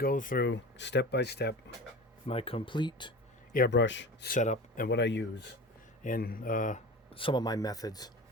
through step by step my complete airbrush setup and what I use and some of my methods.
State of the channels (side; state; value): both; normal; correlation 0.33